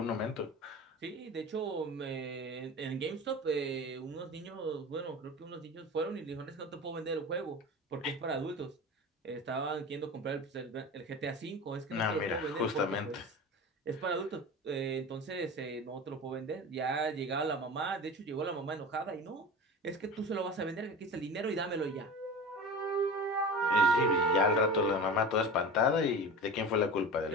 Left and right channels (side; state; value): both; normal; correlation 0.32